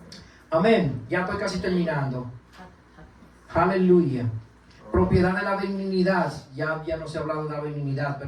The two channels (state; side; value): identical; both; correlation 1.00